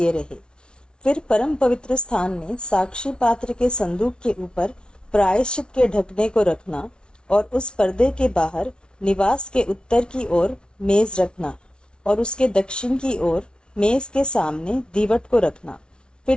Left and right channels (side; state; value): right; late; 0.056 ms